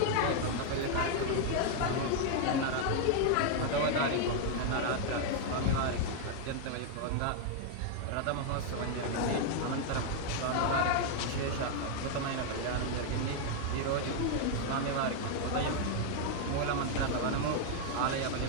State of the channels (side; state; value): both; different; correlation 0.00